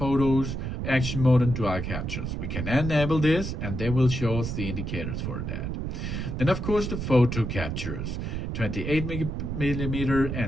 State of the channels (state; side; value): noise; right; rumble, 3 dB below the sound